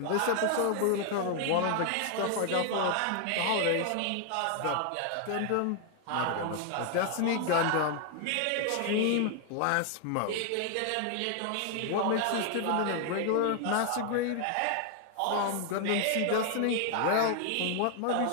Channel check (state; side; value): different; both; correlation 0.00